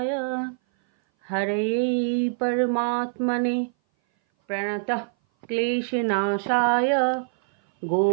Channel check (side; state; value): left; silent; 58 dB below the other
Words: हरये परमात्मने प्रणतः क्लेशनाशाय